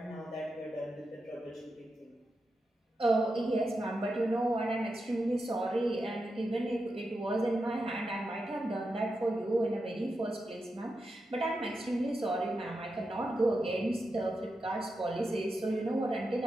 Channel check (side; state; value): both; normal; correlation 0.88